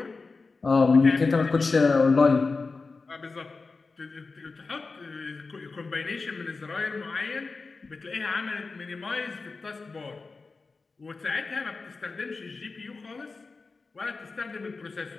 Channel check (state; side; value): quieter; right; 4.1 dB